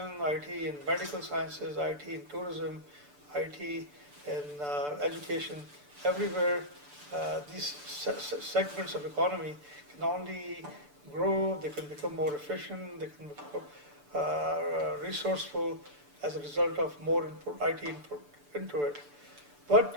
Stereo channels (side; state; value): left; late; 6.9 ms